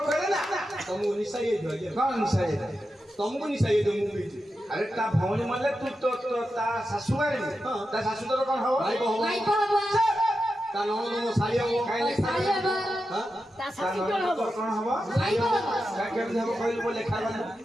करे ना तुमको निशा ये दो कौन निशा ये तुमको निशा ये दो मुंबई अरे ता भौणी मले तू तो ता सासू गाड़ी ता सासू तो कौन हो भाई को हबो ମାଇପା ହବ ତା ନଣନ୍ଦ ସାଇ ହବ ଶାଶୁ ହବ हां ता ननद तो कौन हो ମାଇପା ହବ का केम हबो कहल बोले खा बना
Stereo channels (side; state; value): both; normal; correlation 0.89